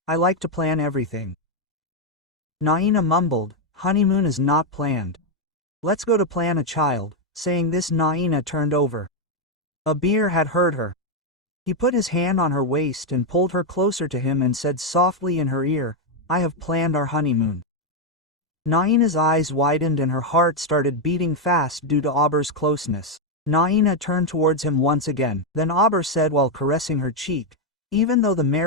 I like to plan everything." Naina mumbled, "Honeymoon is not planned. Let's go to plan a child." Saying this, Naina turned over. Abir had heard her. He put his hand on her waist and pulled her closer to him and said softly in her ear, "I have planned our honeymoon." Naina's eyes widened and her heart started beating fast due to Abir's closeness. Naina turned towards him once again. Then Abir said while caressing her cheek, "Even though the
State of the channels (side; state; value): both; normal; correlation 0.02